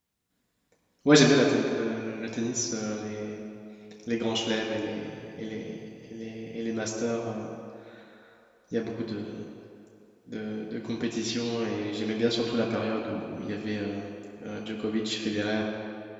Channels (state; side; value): identical; both; correlation 1.00